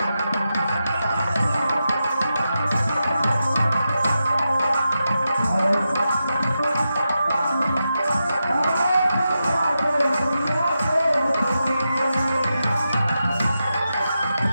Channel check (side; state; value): both; inverted; correlation -0.89